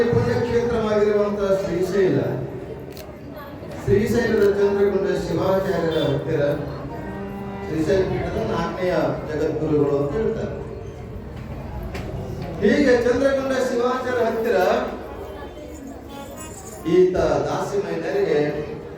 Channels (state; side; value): identical; both; correlation 1.00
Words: ಪುಣ್ಯಕ್ಷೇತ್ರವಾಗಿರುವಂತಹ ಶ್ರೀಶೈಲದ ಚಂದ್ರಗುಂಡ ಶಿವಾಚಾರ್ಯರ ಹತ್ತಿರ ಶ್ರೀಶೈಲ ಪೀಠದ 4ನೇ ಜಗದ್ಗುರುಗಳು ಅಂತ ಹೇಳ್ತಾರೆ. ಹೀಗೆ ಚಂದ್ರಗುಂಡ ಶಿವಾಚಾರ್ಯ ಹತ್ತಿರ ಈತ ದಾಸಿಮಯ್ಯನರಿಗೆ